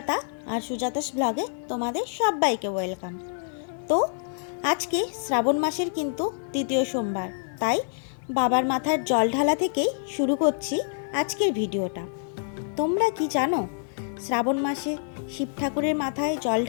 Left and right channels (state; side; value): silent; right; 60 dB below the other